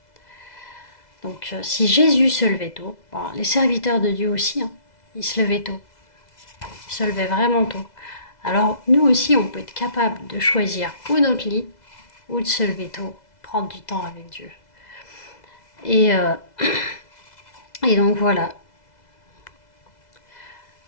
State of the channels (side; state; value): right; late; 2.0 ms